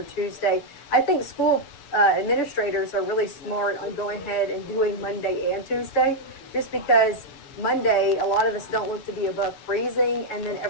Tuesday. I think school administrators are really smart on going ahead and doing Monday and Tuesday, just because Monday, a lot of us don't look to be above freezing, and then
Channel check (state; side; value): late; right; 6.9 ms